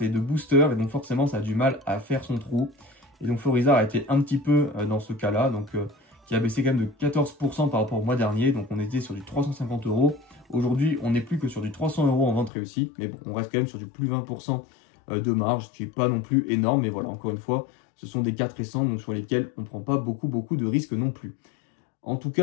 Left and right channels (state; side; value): drops out; right; at 12.5 s